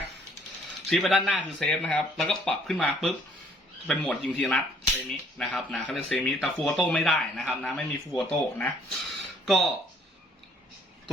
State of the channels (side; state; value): both; normal; correlation 0.61